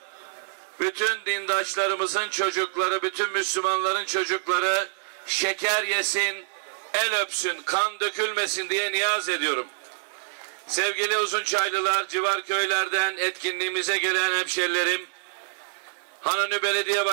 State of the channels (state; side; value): silent; left; 61 dB below the other